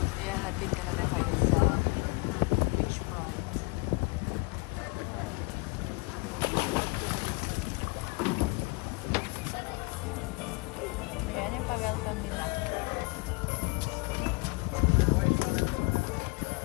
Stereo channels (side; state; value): right; quieter; 27.6 dB